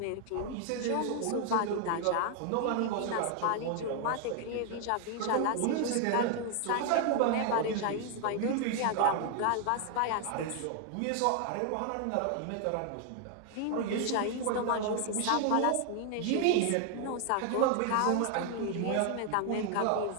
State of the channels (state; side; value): different; both; correlation 0.00